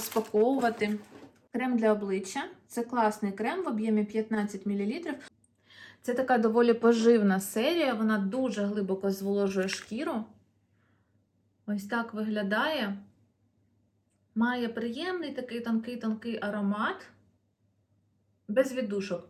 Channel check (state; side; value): identical; both; correlation 1.00